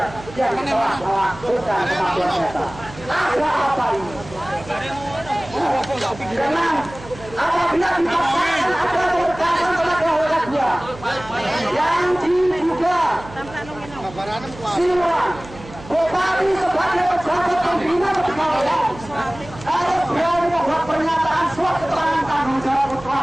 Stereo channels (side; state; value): right; noise; hum, 17 dB below the sound